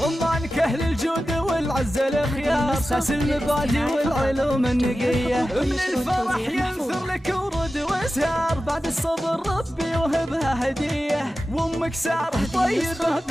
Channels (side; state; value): both; normal; correlation 0.94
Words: عمانك أهل الجود والعز الخيار، ساس المبادئ والعلوم النقية، من الفرح ينثر لك ورد وازهار، بعد الصبر ربي وهبها هدية، وامك سارة طيبة